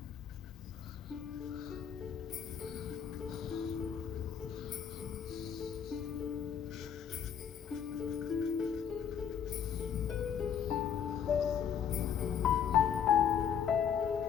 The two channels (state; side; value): quieter; right; 8.2 dB